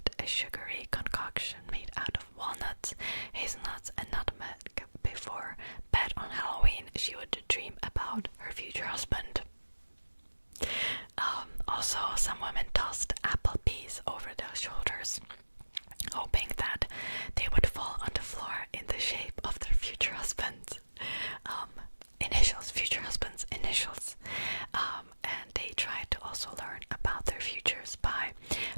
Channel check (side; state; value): both; inverted; correlation -1.00